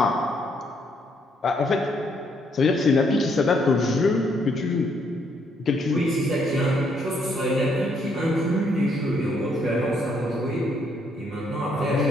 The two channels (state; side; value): normal; both; correlation 0.71